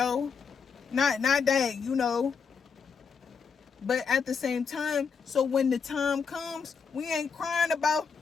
Not that, but at the same time, so when the time comes, we ain't crying about,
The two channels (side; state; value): right; quieter; 5.9 dB